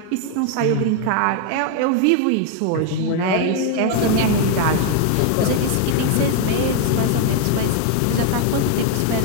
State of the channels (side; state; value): both; different; correlation 0.01